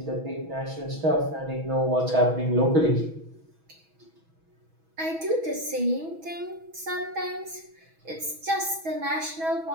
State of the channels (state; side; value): late; left; 6.2 ms